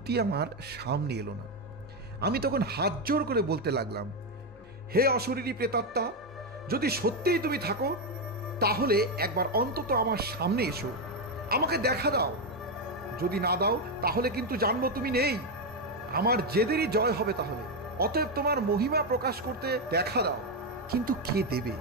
আমার সামনে এলো না। আমি তখন হাত জোর করে বলতে লাগলাম, হে অশরীরী প্রেতাত্মা, যদি সত্যিই তুমি থাকো তাহলে একবার অন্তত আমার সামনে এসো, আমাকে দেখা দাও। যদি না দাও তাহলে কিন্তু জানবো তুমি নেই। আমার জেদেরই জয় হবে তাহলে। অতএব তোমার মহিমা প্রকাশ করতে দেখা দাও। কিন্তু কে দেবে?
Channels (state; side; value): normal; both; correlation 0.06